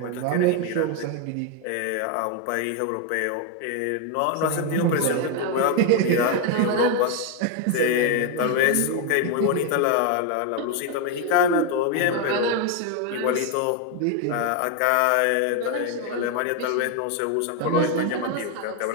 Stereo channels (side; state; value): both; different; correlation 0.01